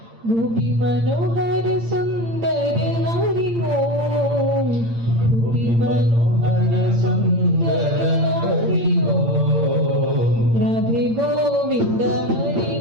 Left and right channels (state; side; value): late; left; 8.8 ms